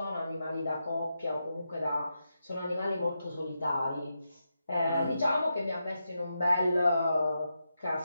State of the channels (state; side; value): inverted; both; correlation -0.86